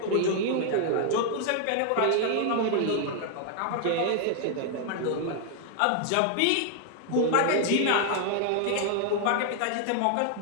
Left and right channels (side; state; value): both; different; correlation 0.00